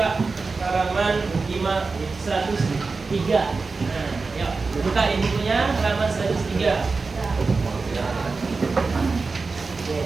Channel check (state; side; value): quieter; left; 4.2 dB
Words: halaman 103. Nah, yuk, buka ini punya halaman 103.